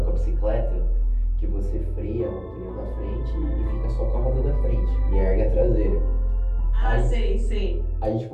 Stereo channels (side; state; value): both; identical; correlation 1.00